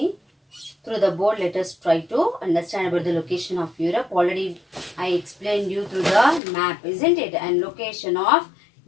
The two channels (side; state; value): right; drops out; at 6.4 s